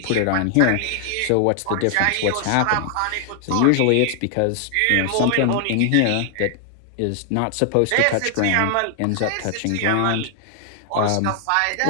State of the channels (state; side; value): different; both; correlation 0.00